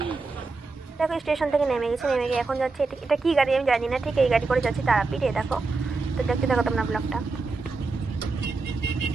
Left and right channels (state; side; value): quieter; left; 3.9 dB